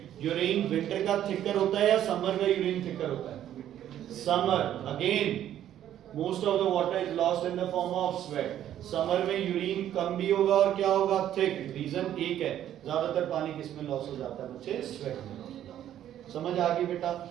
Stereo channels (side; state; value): left; quieter; 11.3 dB